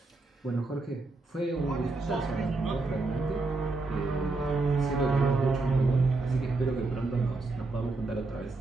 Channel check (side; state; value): left; quieter; 3.4 dB